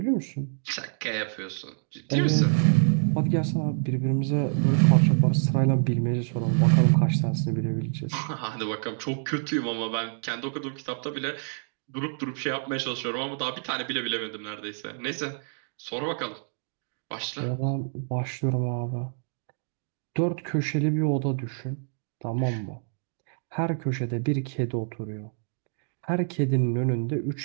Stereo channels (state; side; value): silent; left; digital silence